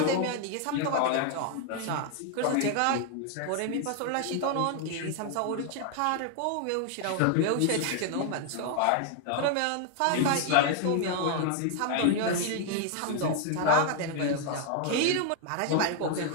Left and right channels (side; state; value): both; different; correlation 0.00